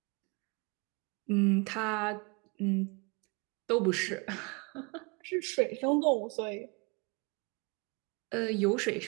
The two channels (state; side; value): quieter; left; 30.4 dB